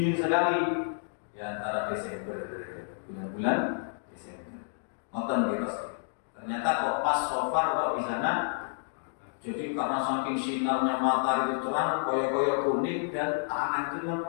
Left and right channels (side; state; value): right; silent; digital silence